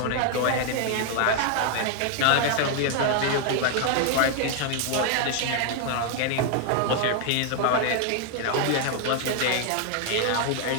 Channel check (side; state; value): both; different; correlation 0.00